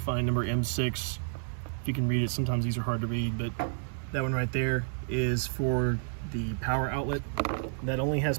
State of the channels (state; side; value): silent; left; digital silence